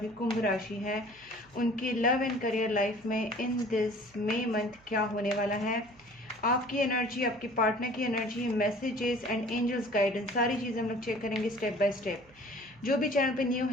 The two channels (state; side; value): noise; right; hum, 28 dB below the sound